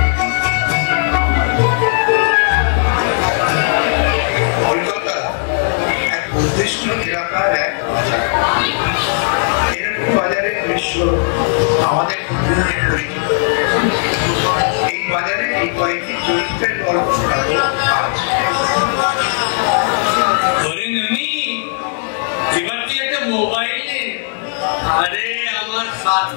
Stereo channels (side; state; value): right; silent; 62 dB below the other